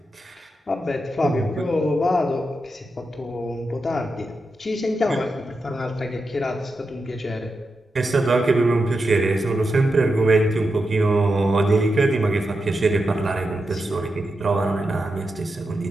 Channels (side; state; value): both; normal; correlation 0.88